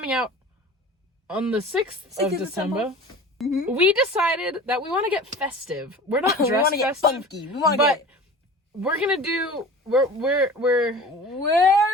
out on the 6th of December, we decided that we want to get festive. We're not dressed we want to get festive, funky. We want to but get... we're going to do... We're rating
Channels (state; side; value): normal; both; correlation 0.39